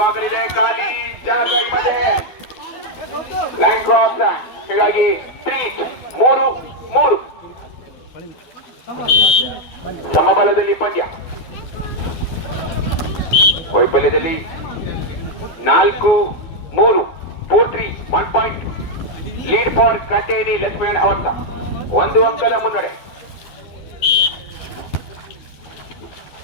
ಖಾಲಿ ಜಾಗ ಮಧ್ಯೆ ಲೈನ್ ಕ್ರಾಸ್, ಹೀಗಾಗಿ 3-3 ಸಮಬಲದಲ್ಲಿ ಪಂದ್ಯ. ವೈಫಲ್ಯದಲ್ಲಿ 4-3 4-3 1 ಪಾಯಿಂಟ್ ಲೀಡ್ ಫಾರ್ ಕಟೇನಿ ಲಕ್ಷ್ಮೀನಾರಾಯಣ್ ಅವತ್ತ 1 ಅಂಕದ ಮುನ್ನಡೆ.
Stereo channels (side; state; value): right; late; 12 ms